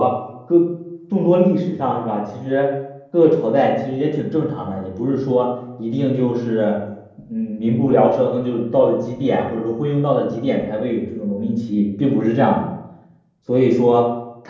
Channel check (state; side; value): identical; both; correlation 1.00